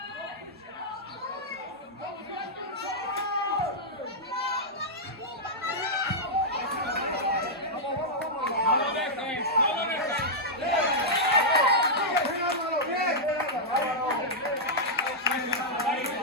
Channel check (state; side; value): normal; both; correlation -0.08